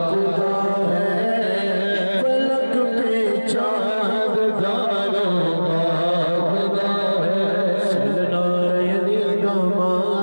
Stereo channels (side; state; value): both; inverted; correlation -1.00